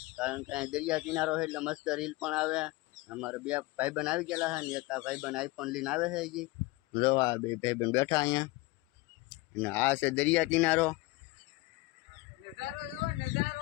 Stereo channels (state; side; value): quieter; right; 21.6 dB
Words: કારણ કે દરિયા કિનારો છે એટલે મસ્ત રીલ પણ આવે। અમારે બે ભાઈબંધ આવી ગયેલા છે ને એક ભાઈબંધ આઈફોન લઈને આવે છે હજી। જો આ બે ભાઈબંધ બેઠા અહીંયા, અને આ છે દરિયા કિનારો।